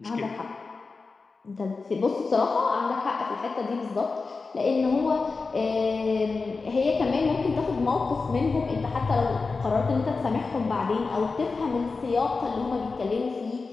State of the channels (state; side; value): quieter; right; 4.2 dB